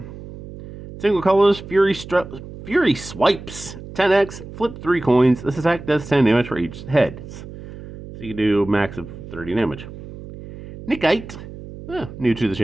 Single colors, Fury Swipes, 10x, flip 3 coins. This attack does 10 damage for each head. So you can do a max of 30 damage. Nickite, new to the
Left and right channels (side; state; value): right; noise; hum, 13 dB below the sound